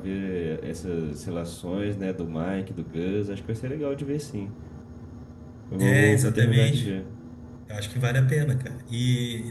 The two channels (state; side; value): identical; both; correlation 1.00